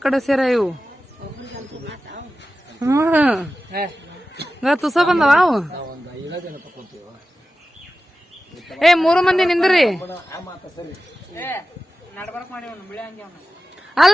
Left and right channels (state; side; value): normal; both; correlation 0.94